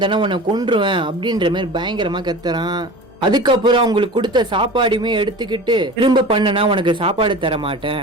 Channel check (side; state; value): both; normal; correlation 0.36